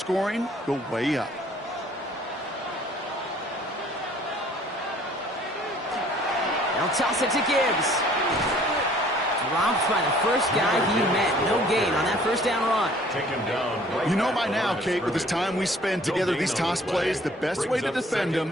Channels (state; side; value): normal; both; correlation 0.56